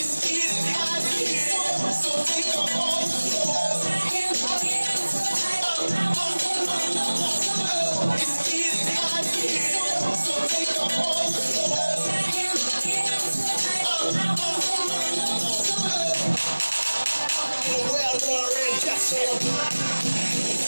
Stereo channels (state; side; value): inverted; both; correlation -1.00